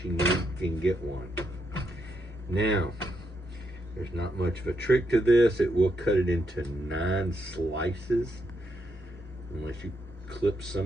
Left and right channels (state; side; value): normal; both; correlation 0.79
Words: you can get one. Now, there's not much of a trick to this. It will cut it into 9 slices unless you clip